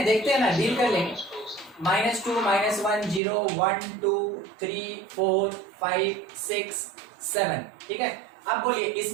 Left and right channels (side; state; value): left; drops out; at 3.2 s